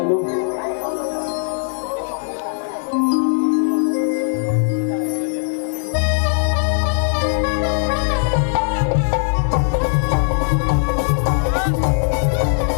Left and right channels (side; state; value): right; silent; digital silence